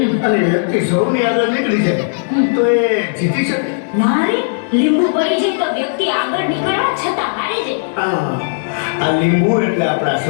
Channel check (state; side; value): silent; right; digital silence